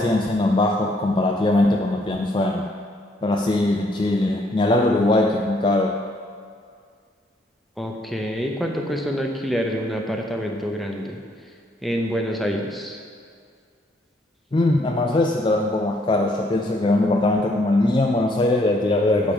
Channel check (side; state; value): both; normal; correlation 0.68